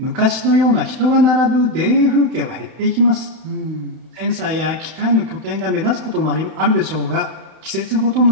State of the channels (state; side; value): late; left; 31 ms